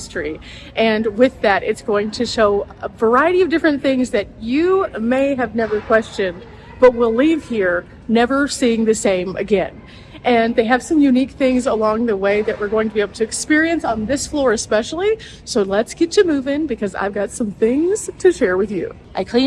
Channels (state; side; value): identical; both; correlation 1.00